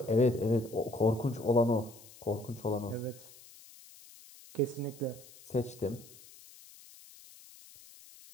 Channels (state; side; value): noise; left; hiss, 21 dB below the sound